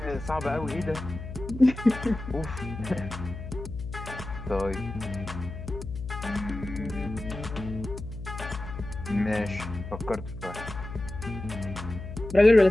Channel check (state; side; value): noise; left; hum, 9 dB below the sound